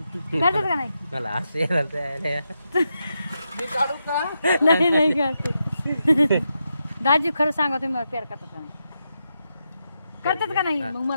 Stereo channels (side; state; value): both; inverted; correlation -0.85